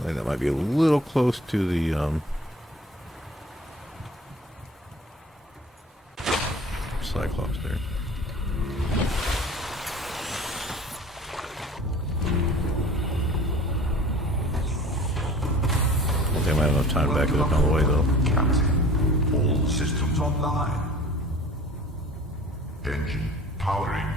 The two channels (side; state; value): both; normal; correlation 0.45